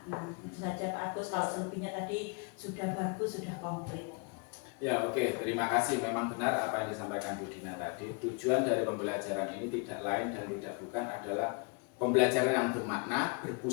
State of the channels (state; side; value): quieter; right; 33.5 dB